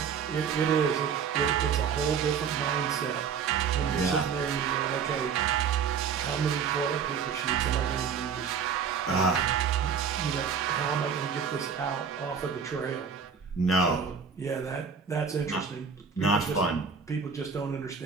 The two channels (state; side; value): quieter; left; 6.6 dB